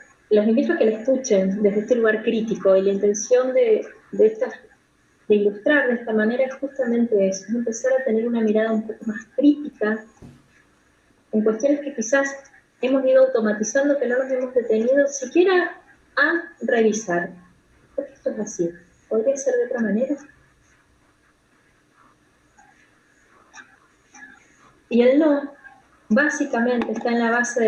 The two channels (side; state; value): both; identical; correlation 1.00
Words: los invito a que la escuchen desde este lugar crítico, y la intención de ilustrar de esta manera es justamente eso, es empezar a tener una mirada un poco más crítica en cuestiones que quizás hemos ido automatizando, que no nos hemos detenido siquiera a revisar. ¿Por qué esto es así? ¿Podría ser de otra manera? Y el no, básicamente, está en la base de